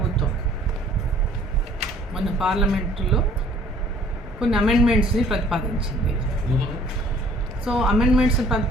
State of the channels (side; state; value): both; normal; correlation 0.57